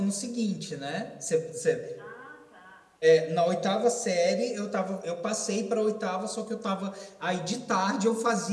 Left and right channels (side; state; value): both; identical; correlation 1.00